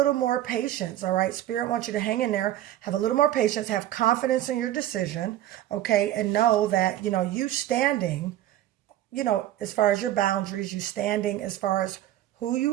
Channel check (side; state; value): left; quieter; 13.2 dB